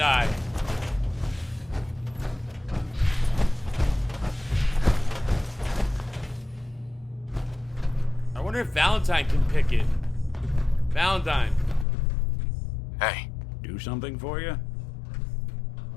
I wonder if Valentine can pick it. Valentine. Hey, Do something for you?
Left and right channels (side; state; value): right; drops out; at 11.9 s